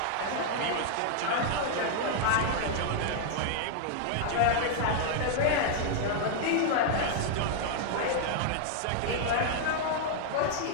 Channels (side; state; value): both; different; correlation 0.00